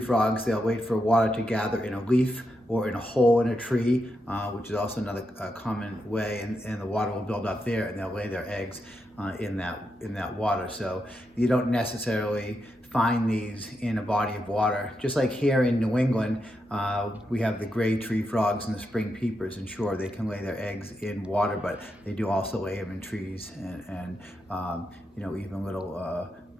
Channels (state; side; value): normal; both; correlation 0.84